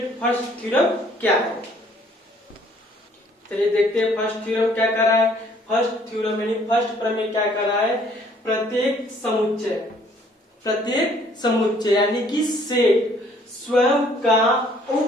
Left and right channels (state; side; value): normal; both; correlation 0.60